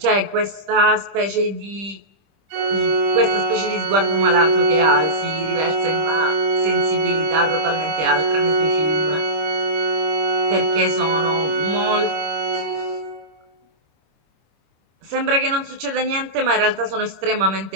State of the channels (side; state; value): left; late; 25 ms